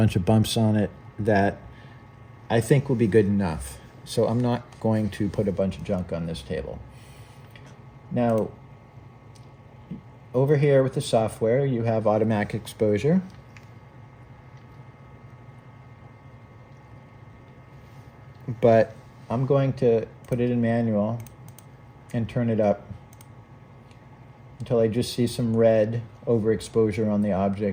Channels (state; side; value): identical; both; correlation 1.00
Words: of bumps on it that I think will be good enough. So I'm not going to put a bunch of junk on this table. Now, over here with the software, you have automatic exposure. But I'm going to put it in manual and turn it up until I just see some red overexposure on the